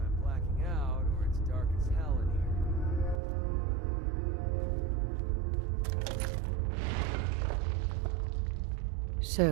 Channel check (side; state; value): left; drops out; at 3.2 s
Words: blacking out or it's dark as hell in here.